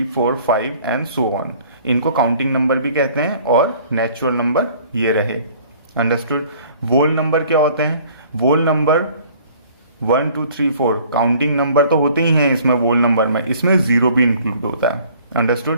4 5 and so on, इनको काउंटिंग नंबर भी कहते हैं और नेचुरल नंबर ये रहे। अंडरस्टूड। वोल नंबर क्या होते हैं? वोल नंबर 1 2 3 4 काउंटिंग नंबर तो होते ही हैं इसमें, वोल नंबर में इसमें जीरो भी इंक्लूड होता है।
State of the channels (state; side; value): inverted; both; correlation -0.53